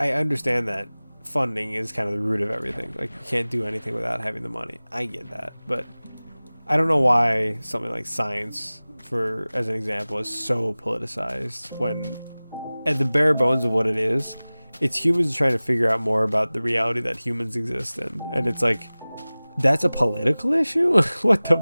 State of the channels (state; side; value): inverted; both; correlation -0.99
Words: understand that funding is kind of the root of everything. Like, you can't do anything without having the money. I get that. But I don't know why something like science, for as an example, is so politicized when at the bare bones of what it is, it's humans trying to figure out more about the reality that humans exist in. And it's like, that's a political issue? What the